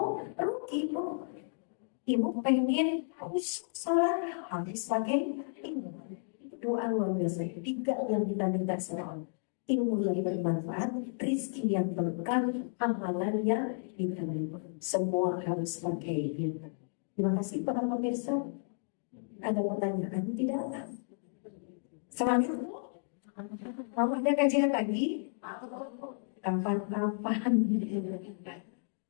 rugi ibu. Ibu pengen harus sholat harus pakai ilmu. Doa luar biasa. 3 yang kita minta sama Allah. Ilmu yang bermanfaat, rezeki yang berkah, amalan yang diterima. Semua harus pakai ilmu. Terima kasih para pemirsa. Ada pertanyaan tidak? Semangat. Mau ada kajian lagi? Kapan-kapan?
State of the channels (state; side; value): silent; right; digital silence